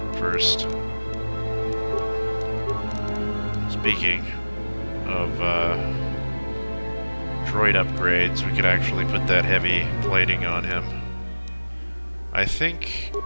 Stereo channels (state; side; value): inverted; both; correlation -1.00